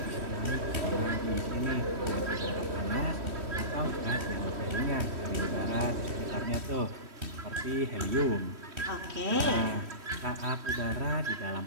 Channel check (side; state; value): left; late; 3.1 ms